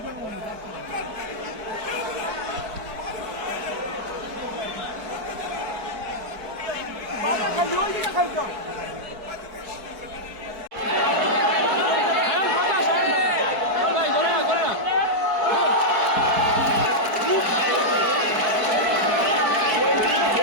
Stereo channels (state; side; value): late; left; 4.6 ms